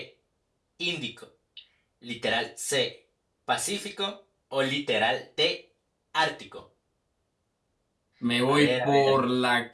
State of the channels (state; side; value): identical; both; correlation 1.00